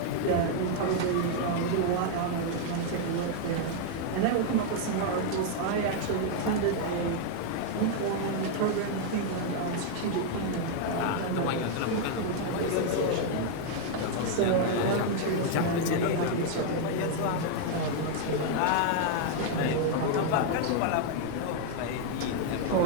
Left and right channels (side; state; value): both; different; correlation 0.00